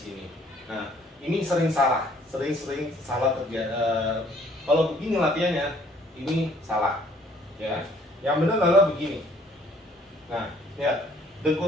Nah, ini sering salah, sering salah terjadi. Kalau begini latihannya, ini salah, ya. Yang benar adalah begini. Nah, lihat,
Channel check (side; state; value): both; normal; correlation 0.60